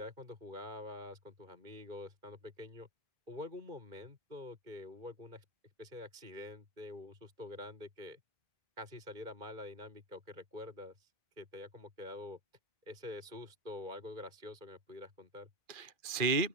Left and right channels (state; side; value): late; left; 2.4 ms